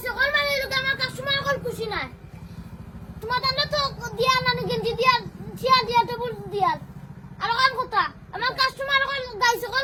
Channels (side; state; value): both; identical; correlation 1.00